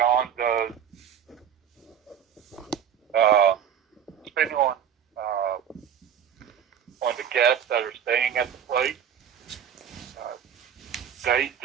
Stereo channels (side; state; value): left; quieter; 8.7 dB